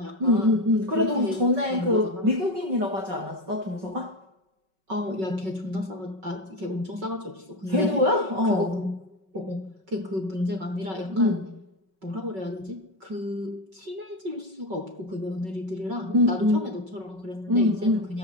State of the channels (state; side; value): late; left; 5.3 ms